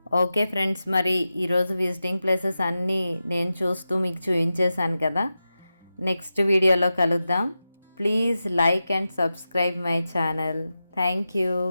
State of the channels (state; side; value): inverted; both; correlation -0.92